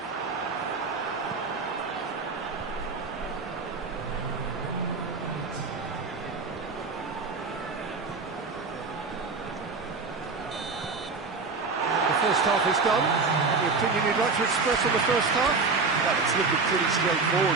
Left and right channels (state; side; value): quieter; left; 4.3 dB